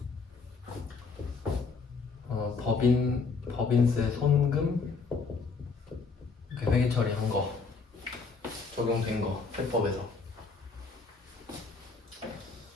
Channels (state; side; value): quieter; right; 4.6 dB